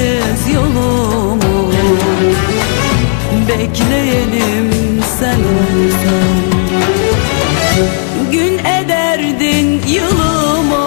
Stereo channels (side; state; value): right; silent; 70 dB below the other